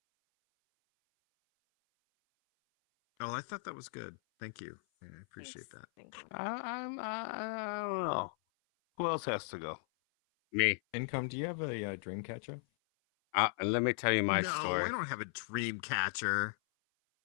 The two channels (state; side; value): silent; right; 53 dB below the other